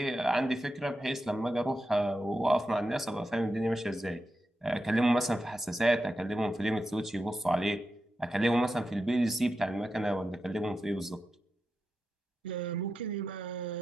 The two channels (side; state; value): both; normal; correlation 0.89